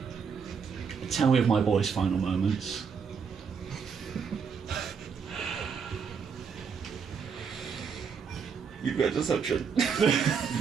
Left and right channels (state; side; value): quieter; left; 6.2 dB